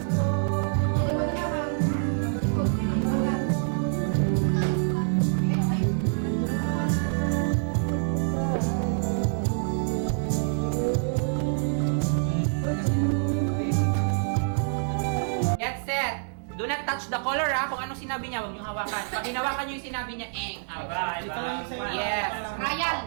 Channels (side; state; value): left; silent; 60 dB below the other